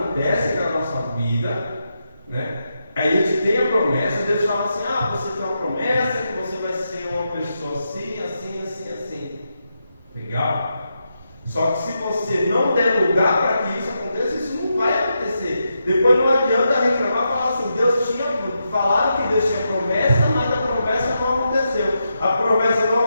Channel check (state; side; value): inverted; both; correlation -0.85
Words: na nossa vida. Né? A gente tem a promessa, Deus fala assim: você tem uma promessa que você vai ser uma pessoa assim, assim, assim, assim. Legal? Só que se você não der lugar para que isso aconteça, isso não vai acontecer. Depois não adianta reclamar e falar assim: falaram que Deus tinha promessa, mas a promessa não aconteceu. A promessa